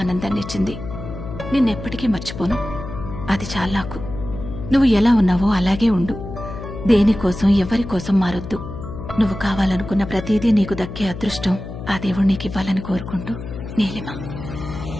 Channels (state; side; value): noise; left; hum, 10 dB below the sound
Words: ఆనందాన్ని ఇచ్చింది. నిన్నెప్పటికీ మర్చిపోను. అది చాలా నాకు. నువ్వు ఎలా ఉన్నావో అలాగే ఉండు. దేనికోసం ఎవరికోసం మారొద్దు. నువ్వు కావాలనుకున్న ప్రతిదీ నీకు దక్కే అదృష్టం ఆ దేవుడు నీకు ఇవ్వాలని కోరుకుంటూ, నీలిమ.